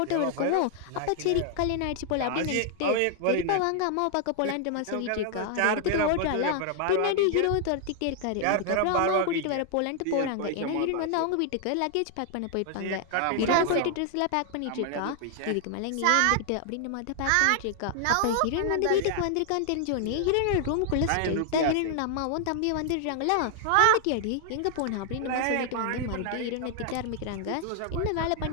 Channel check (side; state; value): both; different; correlation 0.00